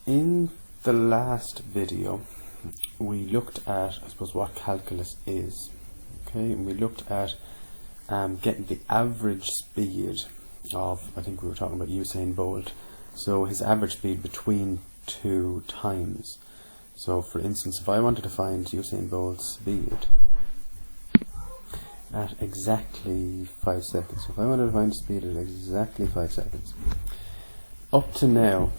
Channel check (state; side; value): inverted; both; correlation -1.00